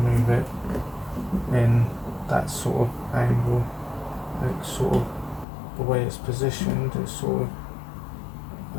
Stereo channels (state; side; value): drops out; right; at 5.5 s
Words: move it in that sort of angle. It's sort of the way it's positioned, it's sort